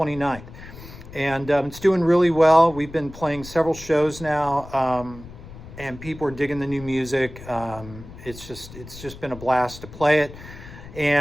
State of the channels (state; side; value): noise; left; rumble, 16 dB below the sound